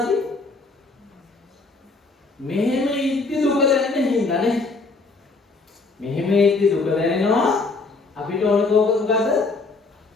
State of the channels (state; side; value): quieter; right; 3.8 dB